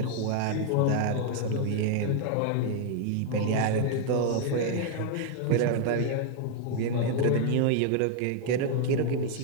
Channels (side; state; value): both; different; correlation 0.00